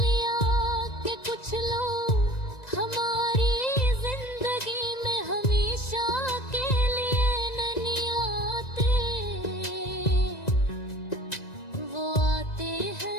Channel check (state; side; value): late; right; 1.9 ms